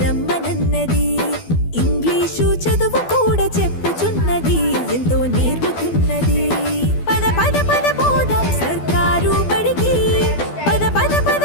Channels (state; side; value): late; right; 12 ms